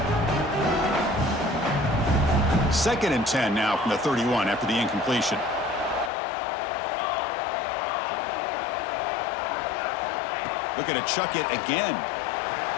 Second and 10 now from the 31 after the incompletion. Looking to chuck it again.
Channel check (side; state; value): right; drops out; at 6.1 s